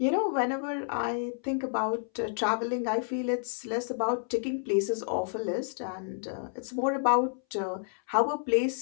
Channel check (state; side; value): silent; right; 58 dB below the other